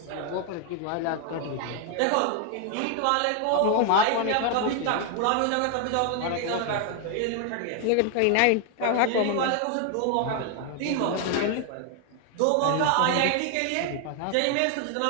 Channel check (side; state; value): both; different; correlation 0.00